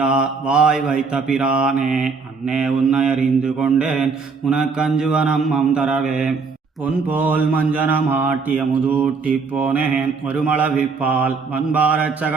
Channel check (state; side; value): quieter; left; 4.8 dB